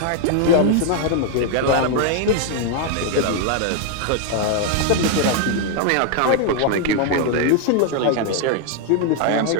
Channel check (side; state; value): both; different; correlation 0.00